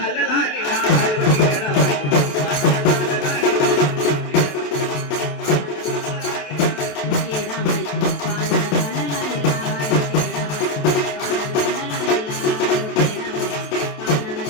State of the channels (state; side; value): late; right; 27 ms